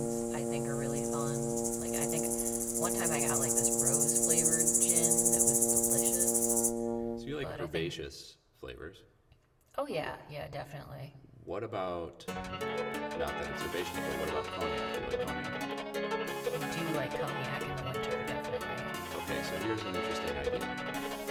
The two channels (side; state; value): both; identical; correlation 1.00